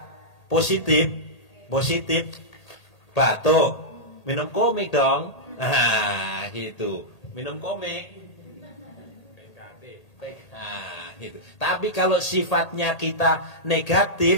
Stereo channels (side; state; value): right; late; 1.8 ms